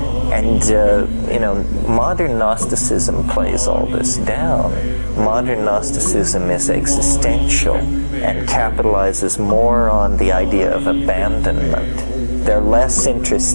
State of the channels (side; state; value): both; inverted; correlation -1.00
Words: And, modern Gnosticism plays all this down. Modern Gnosticism is existential and capitalizes more on the idea of abandonment. They're less